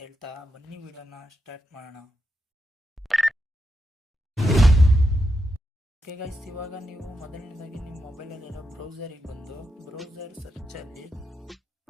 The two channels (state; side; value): normal; both; correlation 0.85